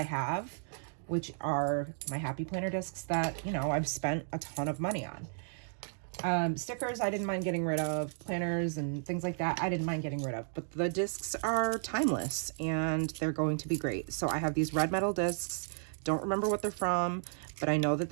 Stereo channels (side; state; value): left; silent; digital silence